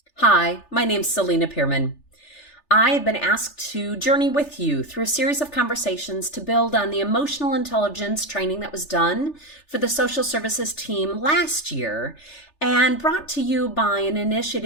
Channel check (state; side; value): late; right; 3.4 ms